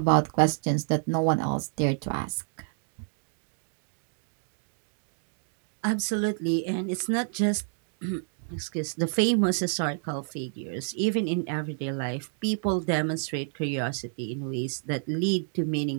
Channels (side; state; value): left; silent; digital silence